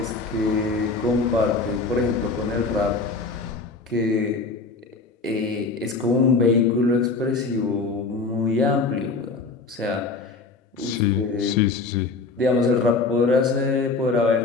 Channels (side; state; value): right; quieter; 4.0 dB